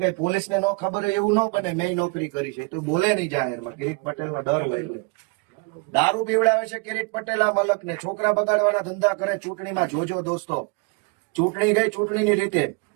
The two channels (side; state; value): left; quieter; 30.4 dB